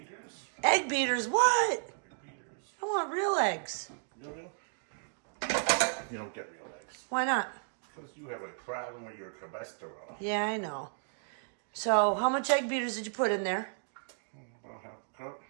Egg beaters, what? Egg beaters. I want real eggs. Real? You don't get real eggs. Why not? Because you have a problem with your cholesterol. Yeah, I know. So, how much egg beaters did you put in there? About half a cup.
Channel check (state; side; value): silent; left; digital silence